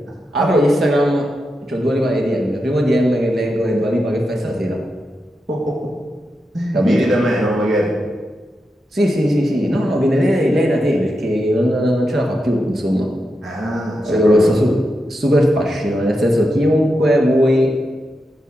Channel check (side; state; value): both; normal; correlation 0.87